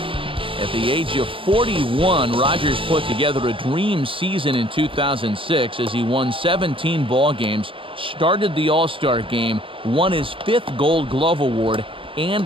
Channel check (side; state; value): left; late; 0.25 ms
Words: At the age of 41, Rogers put together a dream season in 2006 as he won 17 ball games, started the All-Star game, won his 5th Gold Glove Award, and